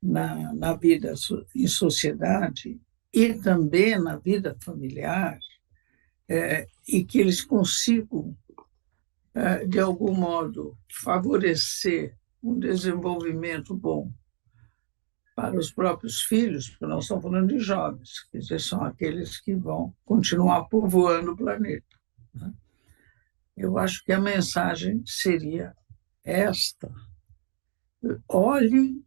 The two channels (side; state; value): left; silent; digital silence